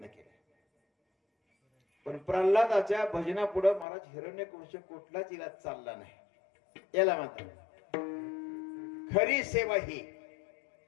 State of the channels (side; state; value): right; drops out; at 3.9 s